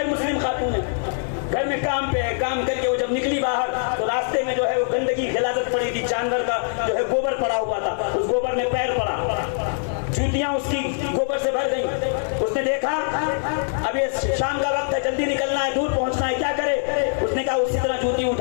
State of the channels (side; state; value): right; silent; 55 dB below the other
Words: मुस्लिम खातून है, घर में काम पे है, काम करके वो जब निकली बाहर तो रास्ते में जो है वो गंदगी खिलाफत पड़ी थी, जानवर का जो है गोबर पड़ा हुआ था, उस गोबर में पैर पड़ा, जूतियां उसकी गोबर से भर गई। उसने देखा अब ये शाम का वक्त है, जल्दी निकलना है, दूर पहुंचना है, क्या करे? उसने कहा उसी तरह जूती